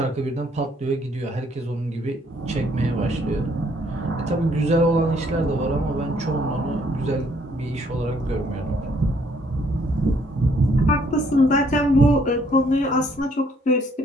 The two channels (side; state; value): both; normal; correlation 0.66